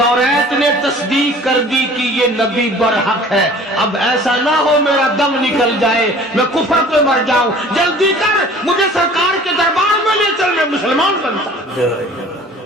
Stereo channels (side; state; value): both; normal; correlation 0.47